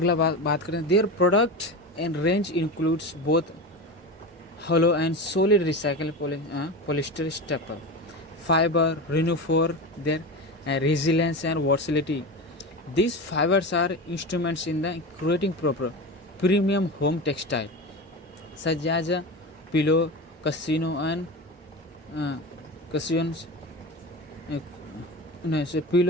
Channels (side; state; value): both; normal; correlation 0.25